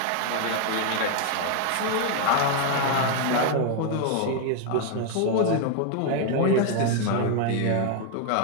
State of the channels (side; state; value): both; different; correlation 0.01